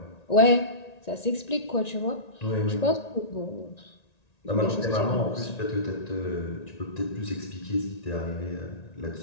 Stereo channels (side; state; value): right; late; 1.9 ms